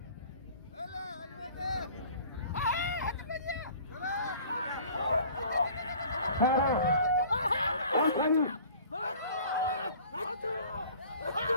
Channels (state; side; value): inverted; both; correlation -0.48